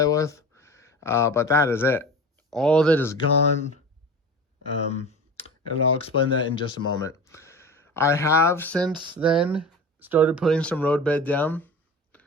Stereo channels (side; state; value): both; normal; correlation 0.34